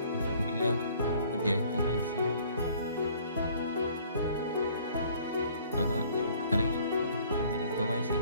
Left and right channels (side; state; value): both; inverted; correlation -0.56